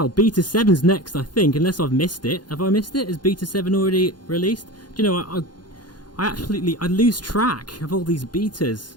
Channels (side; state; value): right; late; 0.70 ms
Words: Beta 7's next, I think, unless I've missed it. Have I missed it? Is Beta 7 already released? Do you know, I lose track of all these